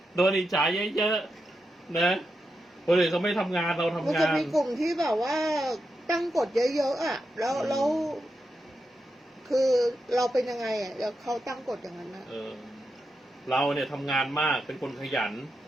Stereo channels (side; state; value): both; normal; correlation 0.87